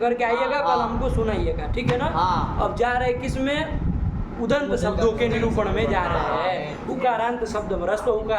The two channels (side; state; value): both; identical; correlation 1.00